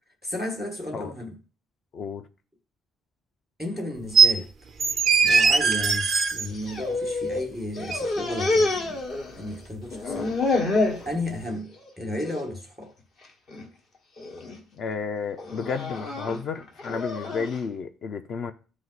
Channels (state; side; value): normal; both; correlation 0.72